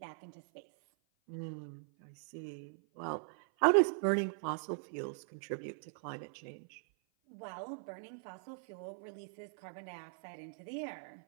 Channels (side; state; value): left; silent; 51 dB below the other